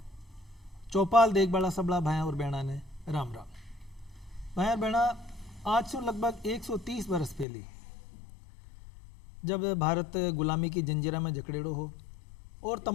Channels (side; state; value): right; drops out; at 7.5 s